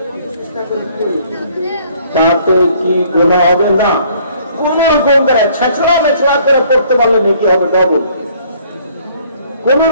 তাতে কি গুনাহ হবে? না, কোন রকম করে ছেঁচড়া মেচড়া করে পড়তে পারলে নেকি হবে ডবল। কোন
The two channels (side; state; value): both; inverted; correlation -0.60